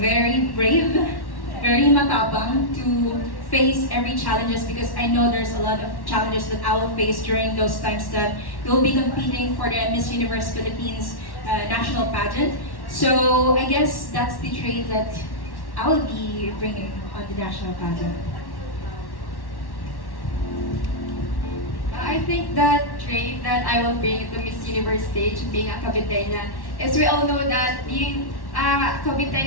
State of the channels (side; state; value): right; late; 1.1 ms